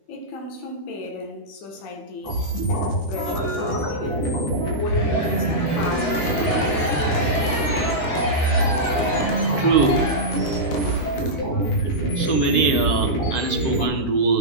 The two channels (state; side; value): late; right; 13 ms